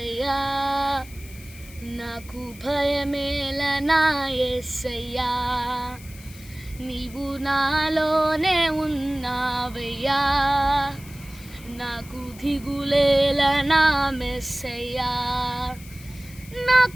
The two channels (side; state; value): left; noise; hiss, 20 dB below the sound